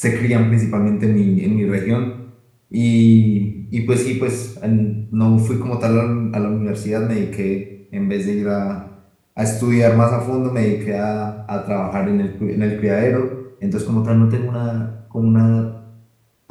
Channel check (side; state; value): both; identical; correlation 1.00